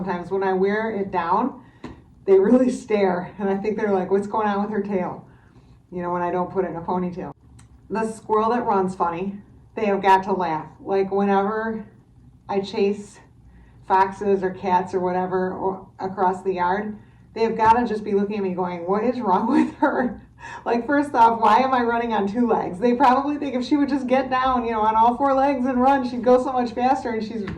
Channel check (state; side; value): identical; both; correlation 1.00